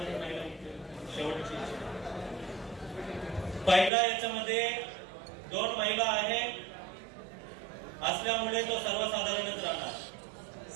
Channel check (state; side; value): drops out; left; at 3.9 s